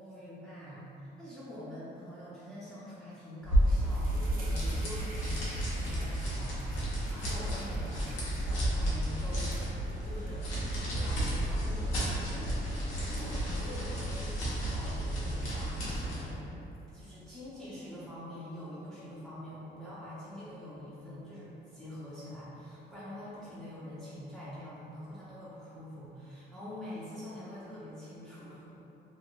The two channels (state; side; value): normal; both; correlation 0.73